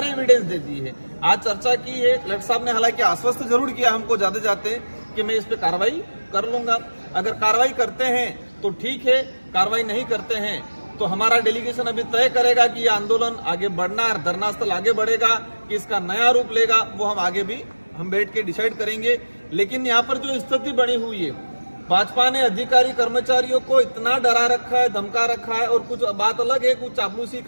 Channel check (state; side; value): inverted; both; correlation -1.00